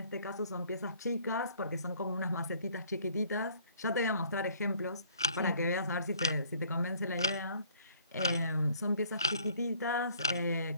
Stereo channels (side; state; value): both; inverted; correlation -0.59